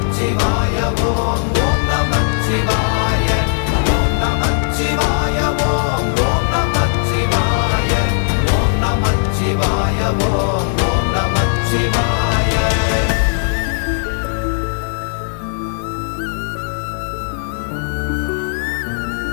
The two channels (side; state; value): right; silent; 68 dB below the other